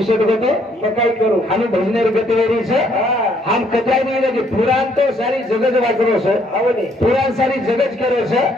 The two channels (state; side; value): normal; both; correlation 0.67